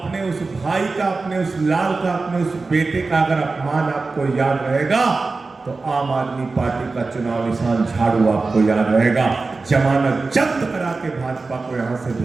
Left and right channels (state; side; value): quieter; left; 3.9 dB